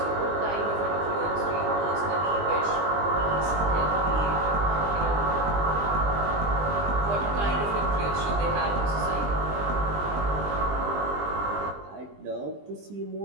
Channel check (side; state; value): left; late; 20 ms